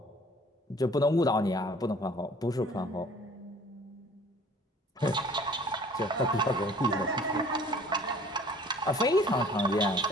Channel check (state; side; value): normal; both; correlation 0.51